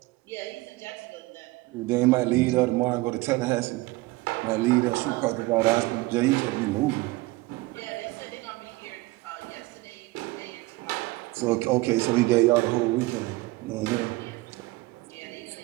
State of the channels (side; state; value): left; quieter; 21.2 dB